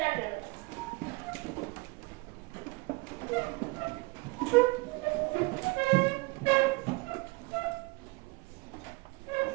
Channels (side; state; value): left; quieter; 26.2 dB